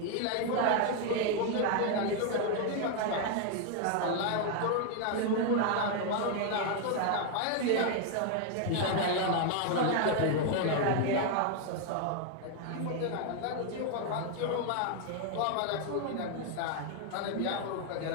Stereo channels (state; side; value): different; both; correlation 0.00